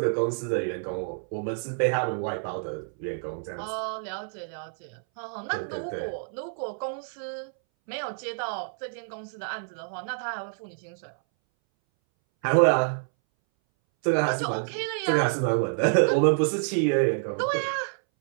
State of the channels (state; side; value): silent; left; 59 dB below the other